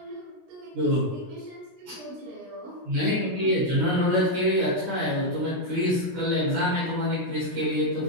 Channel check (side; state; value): left; late; 16 ms